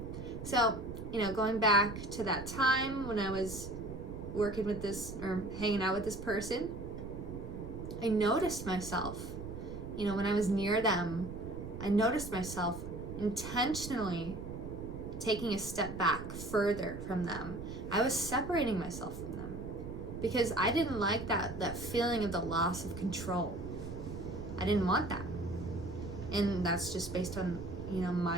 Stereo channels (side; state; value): right; noise; rumble, 9 dB below the sound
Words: So, going back to that time when I was working with this, or hanging out with this person, I noticed myself, when I was near them, I noticed myself intentionally taking a step back further from them. I was separating myself from them because I didn't like that feeling of the loss of control. I didn't want that. And that's just based on,